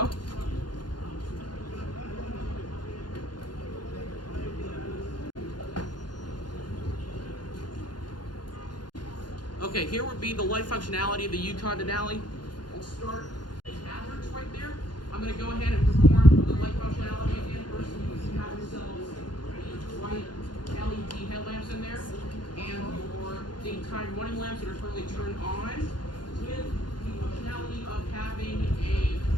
Okay, here would be the light functionality of the Yukon Denali. We'll start with hazards right there. I'm going to go ahead and perform the light functionality again. First, you have yourselves the white LED headlamps in there, and the time running lamps that are currently turned on, with the functionality of having a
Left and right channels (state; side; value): late; right; 0.71 ms